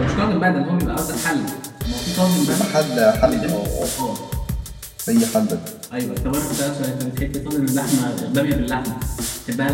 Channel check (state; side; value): identical; both; correlation 1.00